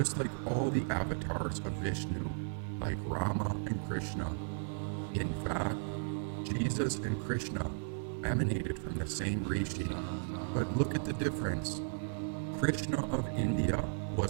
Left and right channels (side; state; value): left; silent; 54 dB below the other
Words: like all the avatars of Vishnu, like Rama and Krishna. In fact, Jesus and Krishna emanated from the same rishi, but look at the difference. Krishna of India